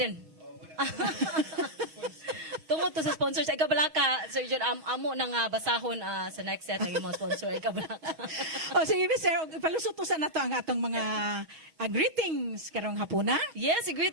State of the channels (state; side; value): late; left; 6.3 ms